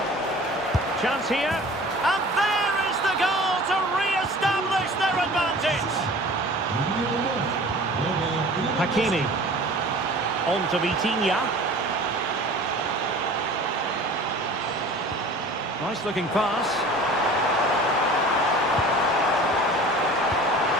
Chance here. And there is the goal to re-establish their advantage. Hakimi. On to Vitinha. Nice looking pass.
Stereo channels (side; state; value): both; normal; correlation 0.43